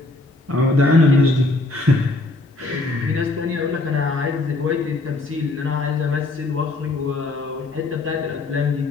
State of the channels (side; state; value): right; quieter; 3.1 dB